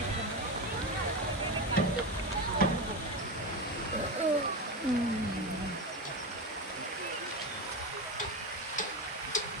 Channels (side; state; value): both; normal; correlation 0.18